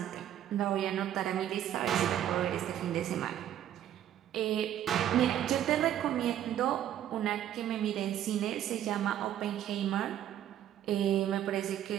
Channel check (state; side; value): quieter; left; 11.2 dB